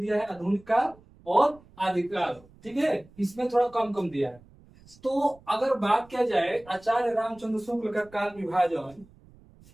है आधुनिक काल और आदिकाल। ठीक है, इसमें थोड़ा कम दिया है। तो अगर बात किया जाए आचार्य रामचंद्र शुक्ल का काल विभाजन,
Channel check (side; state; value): right; noise; rumble, 26 dB below the sound